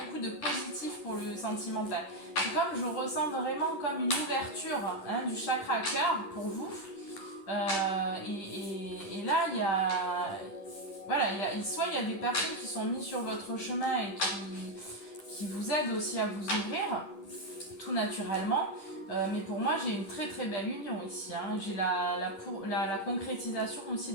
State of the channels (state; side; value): late; right; 10 ms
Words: de positifs pour le sentimental. C'est comme, je ressens vraiment comme une ouverture du chakra cœur pour vous. Et là, il y a... Voilà, soit il y a des personnes qui sont mises sur votre chemin et qui vous aident aussi à vous ouvrir, tout naturellement. Mais pour moi, j'ai une très très belle union ici. J'ai la concrétisation aussi